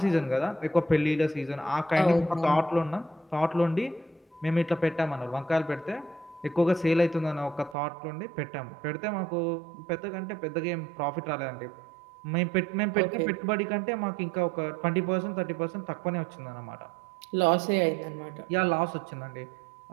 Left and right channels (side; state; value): left; drops out; at 7.8 s